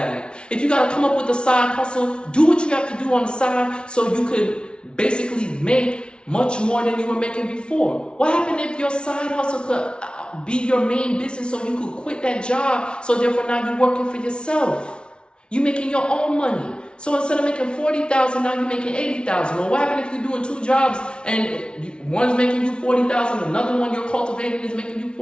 If you got to come up with a side hustle, do what you have to do on the side so you could basically make much more than you were making before. What happened if your side hustle could be your main business, so you could quit that job, so therefore now you're working for yourself? You're making your own money. So instead of making $40,000, now you're making $80,000. Well, what happens if you're doing 2 jobs and one's making you $40,000, another one you're cultivating is making you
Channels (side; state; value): right; late; 0.057 ms